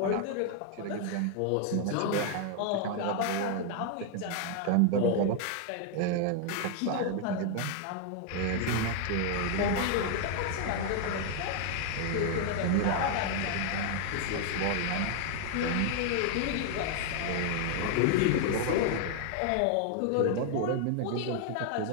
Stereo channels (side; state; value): both; different; correlation 0.00